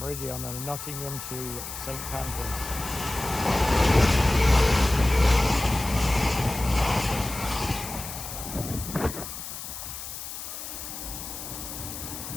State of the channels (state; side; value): noise; left; hiss, 9 dB below the sound